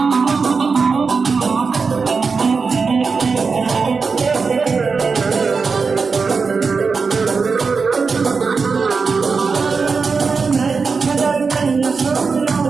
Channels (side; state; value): left; quieter; 4.9 dB